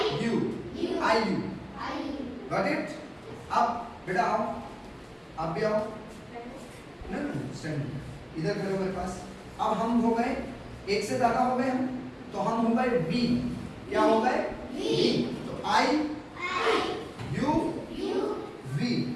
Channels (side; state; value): both; identical; correlation 1.00